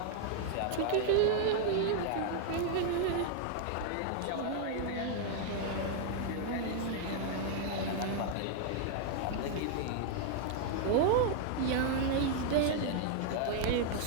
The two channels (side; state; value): both; different; correlation 0.00